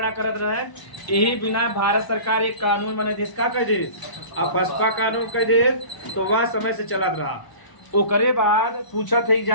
करत रहे। यही बिना भारत सरकार एक कानून बने देश का कह दे, अपस्पा कानून कह दे, तो वह समय से चलत रहा। ओकरे बाद पूछत है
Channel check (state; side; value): late; right; 1.0 ms